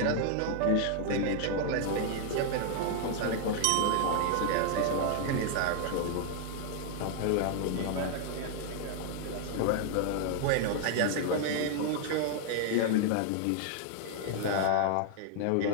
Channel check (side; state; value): both; different; correlation 0.00